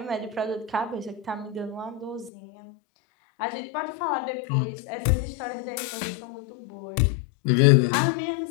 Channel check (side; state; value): right; drops out; at 2.3 s